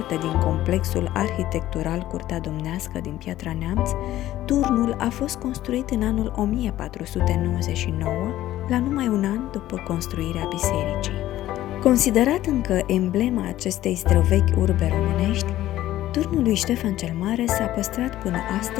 din complexul arhitectural Curtea Domnească din Piatra Neamț, turnul a fost construit în anul 1499, la numai un an după construirea bisericii. Considerat încă emblema acestei străvechi urbe românești, turnul lui Ștefan cel Mare s-a păstrat până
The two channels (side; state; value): right; quieter; 14.2 dB